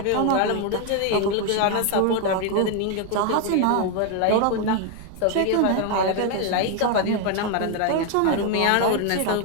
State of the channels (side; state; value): both; different; correlation 0.01